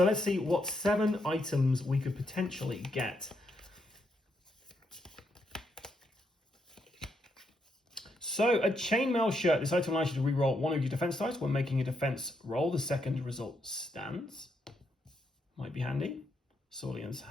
let's see what 7 items we could potentially get. So a chainmail shirt. This item allows you to reroll 1 of your defense dice when making a defense roll. The second result stands. Might be handy. Saulian's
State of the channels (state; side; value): normal; both; correlation 0.79